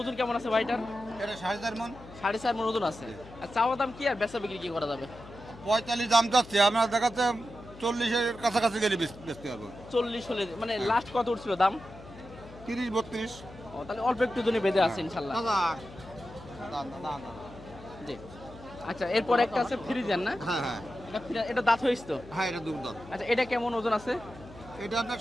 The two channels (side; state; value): left; noise; hum, 18 dB below the sound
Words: কেমন আছে ভাইটার? এটা 4.5 মণ। 4.5 মণ ওজন আছে। আর চাওয়া দাম কি আর বেচা বিক্রি কি করা যাবে? 45 দাম যাচ্ছে, আমরা দেখাচ্ছে 40 এর কাছাকাছি গেলে বেচতে পারবো। 40 হলে মানে লাস্ট কত উঠছিল দাম? 30-32। ও তাহলে অল্প একটু জন্য বেঁধে আছে ইনশাআল্লাহ। জি আচ্ছা, এরপর একটা আছে ফ্রিজেন না? হ্যাঁ হ্যাঁ এটা দাঁত হয়েছে তো? হ্যাঁ এটা দুধ। আচ্ছা এটা কেমন ওজন আছে? এটা আপনার